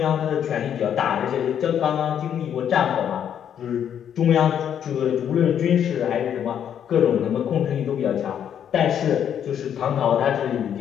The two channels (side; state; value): right; quieter; 9.1 dB